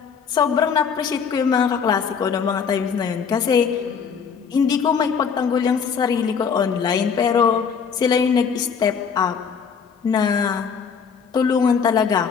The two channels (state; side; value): quieter; right; 6.5 dB